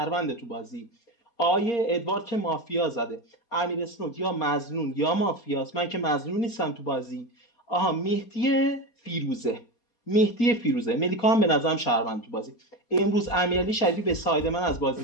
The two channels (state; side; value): late; right; 4.3 ms